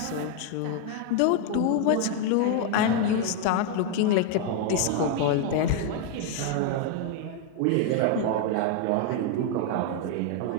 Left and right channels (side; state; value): both; different; correlation 0.01